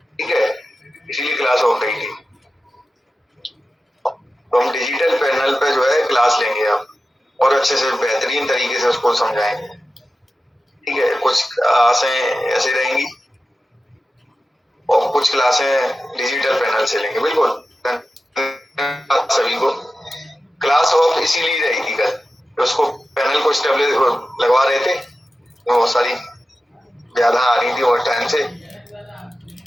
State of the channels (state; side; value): normal; both; correlation 0.93